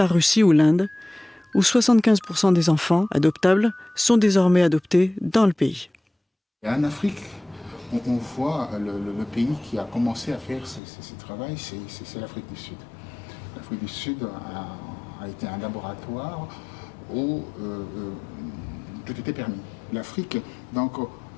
Russie ou l'Inde, où 75% des enfants adoptables sont désormais adoptés dans le pays. En Afrique, on voit le pays qui a commencé à faire ce travail, c'est l'Afrique du Sud. L'Afrique du Sud a été un laboratoire où tout était permis. L'Afrique, donc,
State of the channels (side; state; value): right; drops out; at 10.8 s